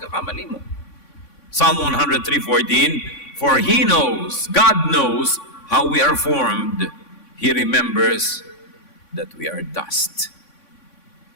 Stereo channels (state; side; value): late; right; 3.5 ms